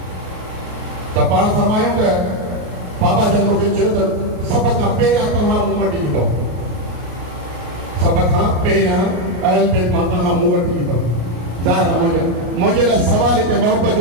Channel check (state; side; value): late; left; 33 ms